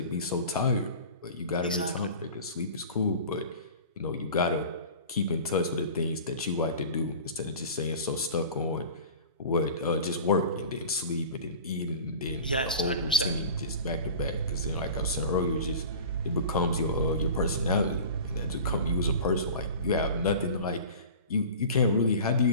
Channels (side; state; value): both; inverted; correlation -0.38